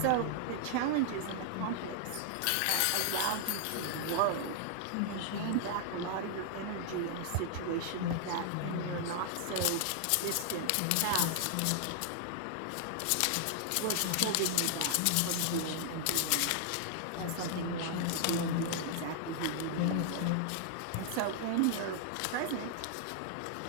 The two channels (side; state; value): both; different; correlation 0.00